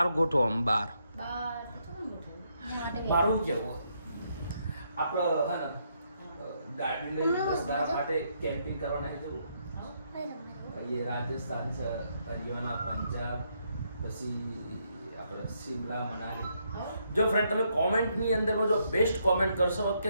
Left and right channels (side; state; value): both; inverted; correlation -0.76